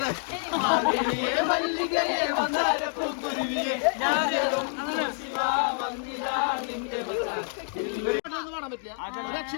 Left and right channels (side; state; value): right; silent; 60 dB below the other